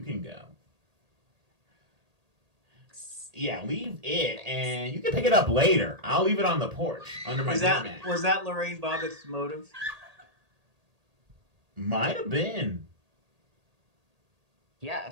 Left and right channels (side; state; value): left; late; 1.8 ms